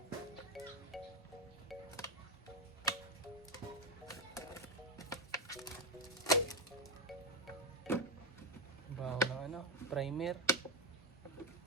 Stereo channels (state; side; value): normal; both; correlation 0.09